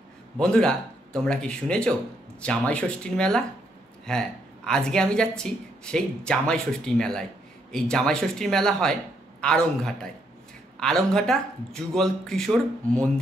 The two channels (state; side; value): normal; both; correlation 0.74